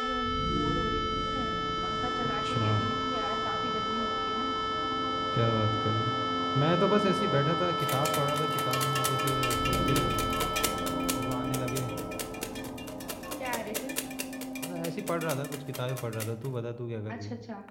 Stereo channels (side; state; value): both; identical; correlation 1.00